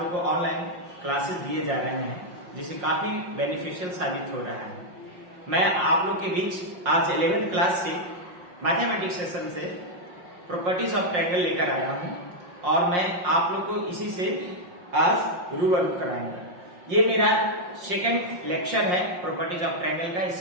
को ऑनलाइन क्लासेस दिए जा रहे हैं जिससे काफी बेनिफिशियल साबित हो रहा है। मैं आप लोग के बीच आज 11th क्लास से मैथमेटिक्स सेशन से प्रॉपर्टीज ऑफ ट्रायंगल लेकर आया हूं और मैं आप लोग को इसी से आज रूबरू कराऊंगा। ये मेरा सेकंड लेक्चर है प्रॉपर्टीज ऑफ ट्रायंगल का।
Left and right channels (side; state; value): left; late; 5.6 ms